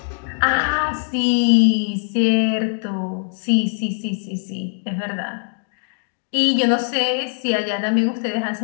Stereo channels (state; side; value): silent; right; 65 dB below the other